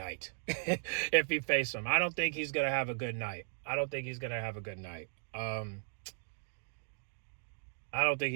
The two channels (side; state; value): left; silent; digital silence